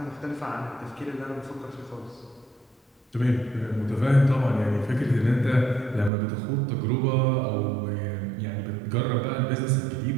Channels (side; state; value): left; drops out; at 6.1 s